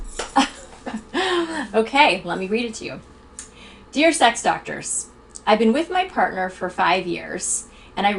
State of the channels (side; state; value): both; identical; correlation 1.00